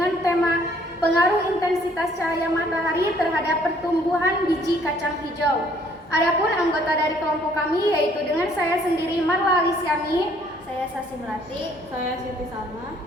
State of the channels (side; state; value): both; normal; correlation 0.62